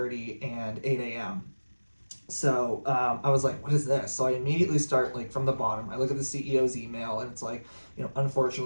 and 8 a.m. So I was like, what is this? So I immediately start from the bottom. I look at the CEO's email, and it's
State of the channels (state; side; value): inverted; both; correlation -1.00